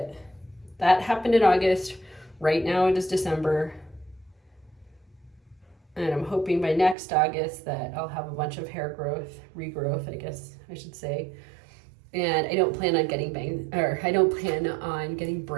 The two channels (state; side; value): drops out; left; at 7.0 s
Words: that happened in August. Right now it is December, and I'm hoping by next August that I'll have a bunch of hair growth, regrowth, I guess I should say. And I don't plan on getting